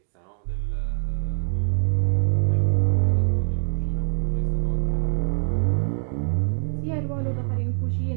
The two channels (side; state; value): left; silent; digital silence